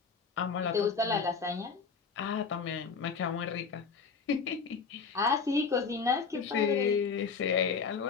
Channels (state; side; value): quieter; right; 5.3 dB